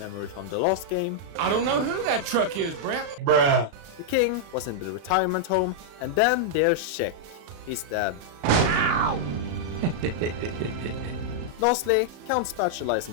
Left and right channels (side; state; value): left; late; 36 ms